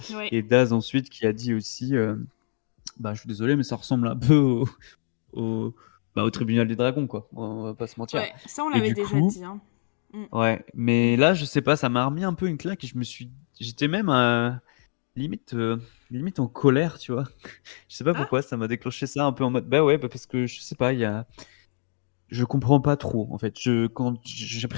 Ouais. Et Daz ensuite qui a dit aussi, bah je suis désolé, mais ça ressemble un peu au, au tribunal des dragons, quoi. On va pas se mentir. Ouais, ça on Et l'avait du déjà coup, dit. Hein. Mm. ouais, mais là je sais pas, ça m'a remis un peu une claque et j'étais même limite, limite en colère, tu vois. Je sais pas Ah. pourquoi, ça m'a déclenché ça un peu en mode, bah ouais, bah parce que je sais pas, je comprends pas trop en fait. Quand j'ai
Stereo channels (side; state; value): right; silent; digital silence